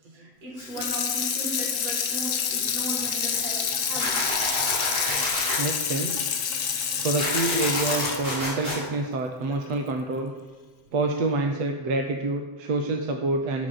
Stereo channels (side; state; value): left; late; 7.8 ms